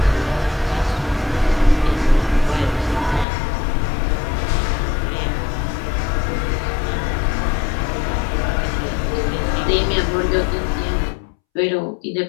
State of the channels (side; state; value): right; drops out; at 3.2 s